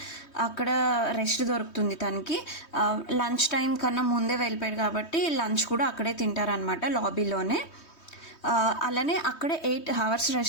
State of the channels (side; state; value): right; late; 3.2 ms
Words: అక్కడ రెస్ట్ దొరుకుతుంది తనకి. లంచ్ టైం కన్నా ముందే వెళ్ళిపోయాడు కాబట్టి లంచ్ కూడా అక్కడే తింటారనమాట, లాబీలోనే. అలానే అక్కడే 8 hours